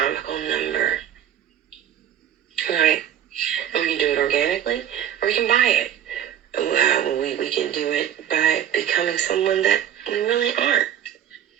number, right? And we can do it organically or we can buy it. We can do it by becoming someone that we really aren't.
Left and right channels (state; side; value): quieter; left; 10.2 dB